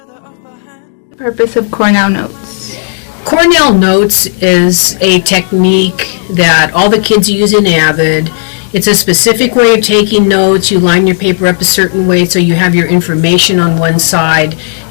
helps you to do. Purpose of Cornell Notes. Cornell Notes is a technique that all the kids use in AVID. It's a specific way of taking notes. You line your paper up a certain way so you have your information on one side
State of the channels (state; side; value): silent; right; digital silence